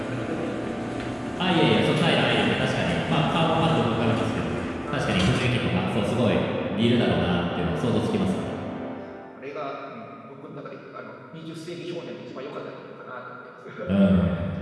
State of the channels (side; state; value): both; identical; correlation 1.00